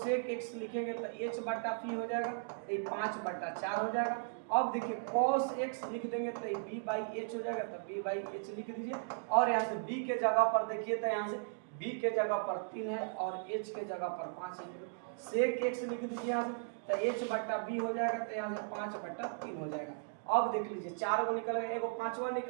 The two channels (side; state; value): left; silent; digital silence